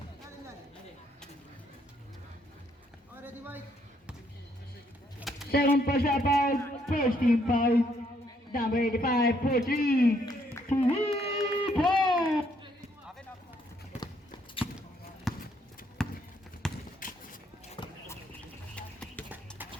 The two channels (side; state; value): both; normal; correlation 0.70